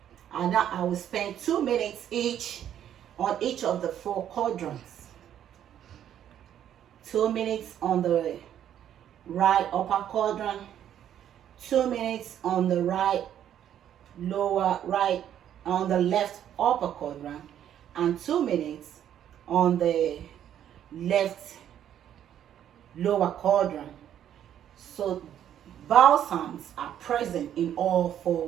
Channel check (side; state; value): left; quieter; 10.3 dB